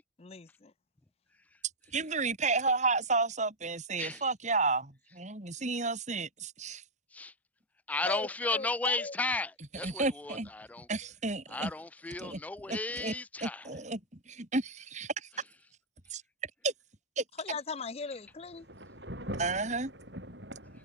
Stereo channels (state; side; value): normal; both; correlation -0.01